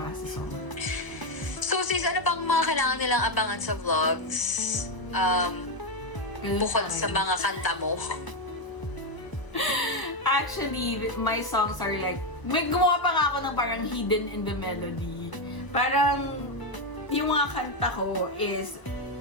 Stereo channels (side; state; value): right; late; 1.0 ms